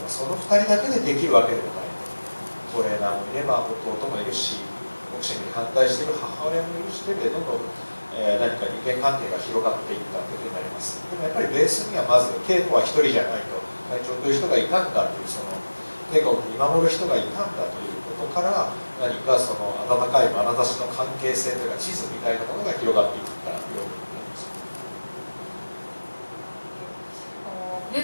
はその2人だけでできるわけでもない。トレーナーもいれば弟もいるし、ボクシングに反対している母親もいるしでどんどん、何か人間関係が広がっていったというふうになります。でもやっぱりベースにはまず稽古は1人じゃないと、会長という人がいたんだというその稽古を見守る人がいたんだということから何かその温かい眼差しの関係性というか地図みたいなものが広がっていったように思います。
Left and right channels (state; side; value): inverted; both; correlation -1.00